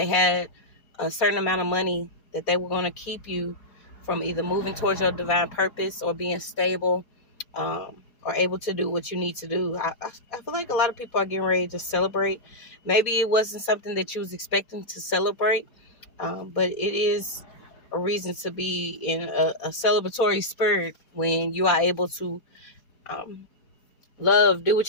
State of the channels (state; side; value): late; right; 4.2 ms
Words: had a certain amount of money that they were going to keep you from either moving towards your divine purpose or being stable or able to do what you need to do. I feel like a lot of people are getting ready to celebrate. Maybe it wasn't something that you was expecting to celebrate, but it is a reason to be in a celebratory spirit when you are able to love, do